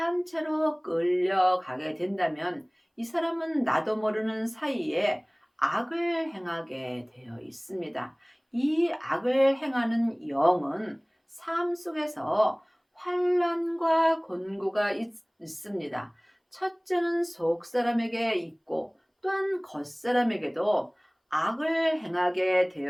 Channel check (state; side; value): identical; both; correlation 1.00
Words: 끌려가게 된다면 이 사람은 나도 모르는 사이에 악을 행하게 되어 있습니다. 이 악을 행하는 영은 삶 속에서 환난과 곤고가 있습니다. 첫째는 속 사람에게 있고 또한 겉 사람에게도 악을 행하게